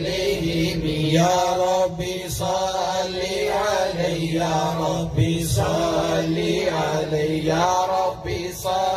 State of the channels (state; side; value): identical; both; correlation 1.00